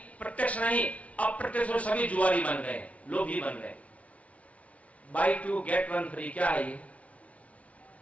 प्रत्यक्ष नहीं, अप्रत्यक्ष सभी जुआरी बन गए, लोग ही बन गए। बाई 2 गेट 1 फ्री, क्या है ये?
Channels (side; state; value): right; late; 0.065 ms